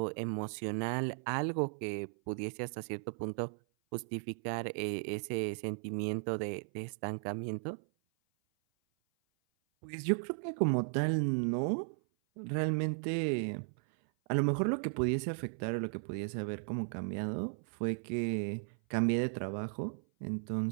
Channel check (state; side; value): silent; left; 54 dB below the other